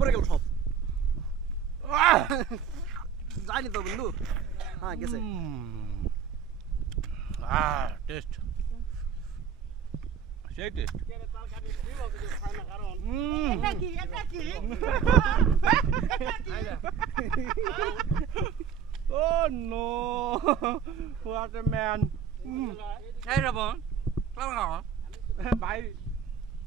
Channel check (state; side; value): quieter; left; 7.4 dB